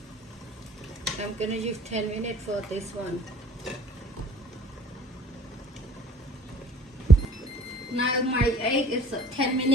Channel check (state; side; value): normal; both; correlation 0.52